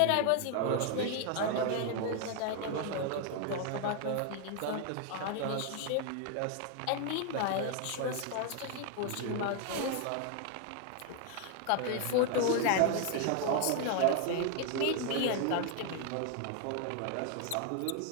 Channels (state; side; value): different; both; correlation 0.00